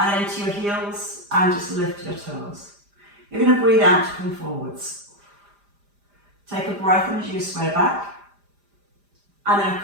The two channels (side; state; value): left; late; 5.0 ms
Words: then into your heels, and just lift your toes. You're going to breathe out to come forwards. Take a breath in as you sway back, and then